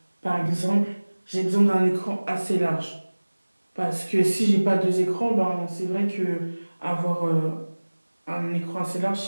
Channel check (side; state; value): both; inverted; correlation -1.00